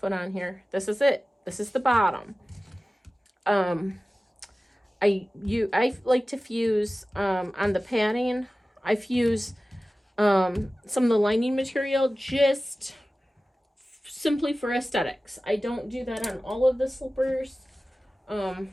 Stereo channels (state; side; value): normal; both; correlation 0.96